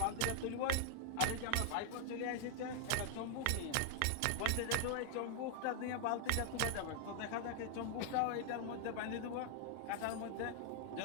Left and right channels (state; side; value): different; both; correlation 0.00